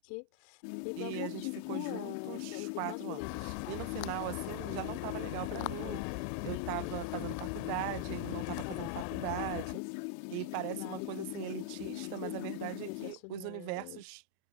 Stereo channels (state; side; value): different; both; correlation -0.01